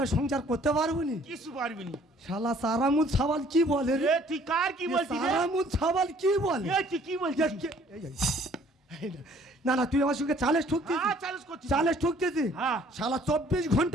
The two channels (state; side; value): normal; both; correlation 0.58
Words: সংসার করতে পারবো নি? কিছু পারবি নি। শালা সারামুদ সাবাল কি বলে রে? তুই কার কি বলছিস? সারামুদ সাবাল কি বলে? তুই কি বলছিস? না না তুই আমার সঙ্গে চালেস ঠুকতিস চ্যালেঞ্জ করছি চালেস ঠুকতেছি হ্যাঁ। শালা 24